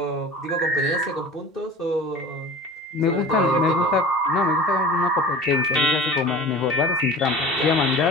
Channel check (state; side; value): normal; both; correlation 0.39